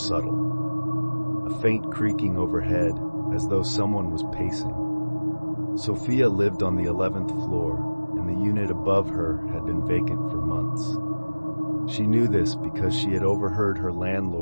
A faint creaking overhead, as though someone was pacing. Sophia lived on the 11th floor, and the unit above her had been vacant for months. She knew this because she had overheard her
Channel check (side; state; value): both; inverted; correlation -1.00